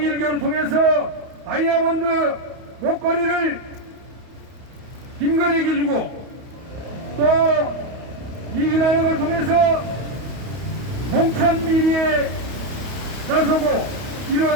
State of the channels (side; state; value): left; late; 31 ms